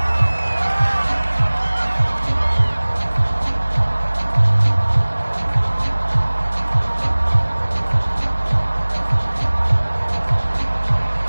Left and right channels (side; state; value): both; inverted; correlation -1.00